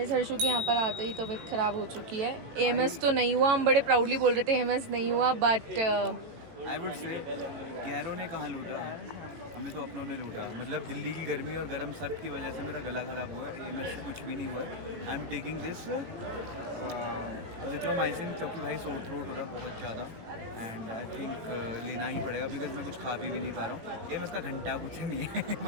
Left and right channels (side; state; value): left; late; 18 ms